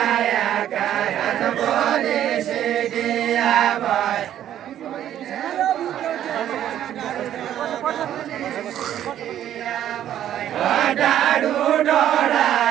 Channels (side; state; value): left; quieter; 11.2 dB